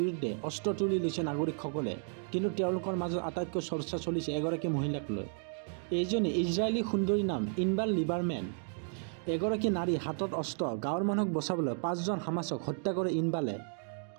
অস্ত্ৰ তুলি লৈছে নাগৰিকসকলে, কিন্তু তেওঁলোকৰ মাজত আটাইতকৈ চৰ্চা চলিছে এগৰাকী মহিলাক লৈ। এইজনী ইজৰাইলী সুন্দৰীৰ নাম ইনবাৰ লিবাৰমেন। এগৰাকী নাৰী হাতত অস্ত্ৰ, গাঁৱৰ মানুহক বচাবলৈ 5জন হামাছক হত্যা কৰে ইনবালে।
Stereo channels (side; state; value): left; silent; 56 dB below the other